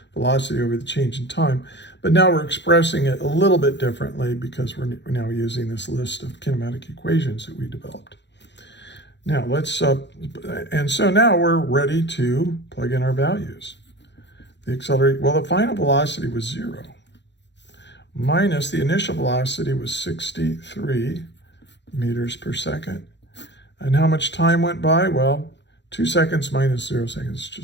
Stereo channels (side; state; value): right; late; 0.52 ms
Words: velocity over the change in time. But now we're expressing it a little bit differently because we're now using this list of kinematic equations that we developed. Now let's, and so now we're ready to plug in our values. The final velocity was 0, minus the initial velocity was 63 meters per second. And how much time went by? Well, 2 seconds minus 0 seconds is